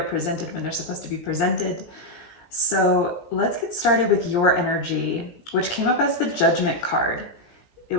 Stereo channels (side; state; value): right; late; 17 ms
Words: presented when they're supposed to be presented. So let's get started with your energy, which came up as the Judgment card. It